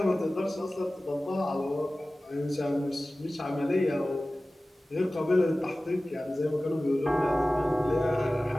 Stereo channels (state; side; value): normal; both; correlation 0.97